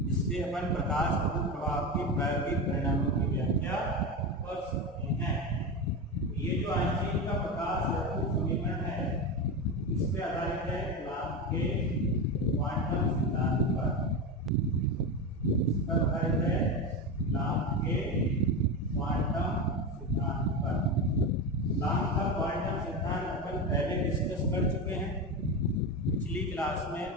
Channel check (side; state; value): both; normal; correlation 0.19